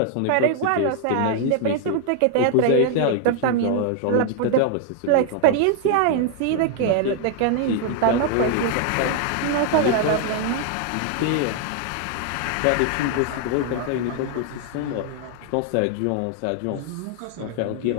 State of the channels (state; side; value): different; both; correlation 0.00